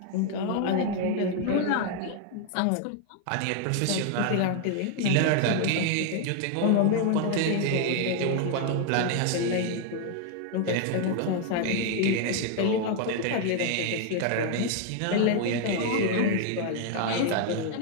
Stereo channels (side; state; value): both; different; correlation 0.00